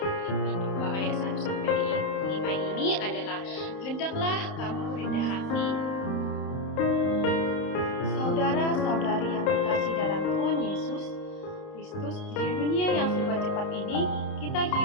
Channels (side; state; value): right; late; 30 ms